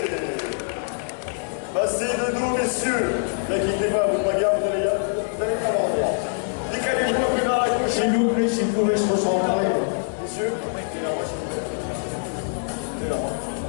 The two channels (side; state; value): right; silent; digital silence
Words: Passez de dos, messieurs. N'inquiétez pas, votre bagarre, vous allez pas avoir droit. Décalez-vous un peu vers la gauche. S'il vous plaît, s'il vous plaît, se recentrer. Messieurs, et là, moi, s'il vous plaît. Et là, moi.